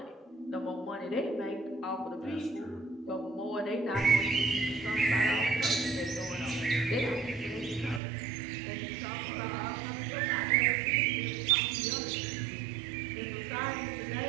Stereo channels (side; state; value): left; drops out; at 8.0 s